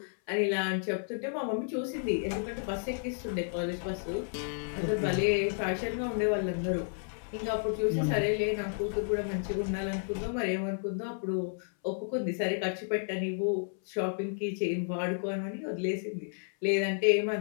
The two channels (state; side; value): silent; right; 57 dB below the other